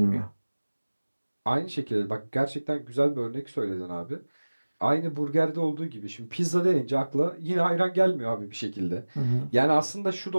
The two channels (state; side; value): inverted; both; correlation -1.00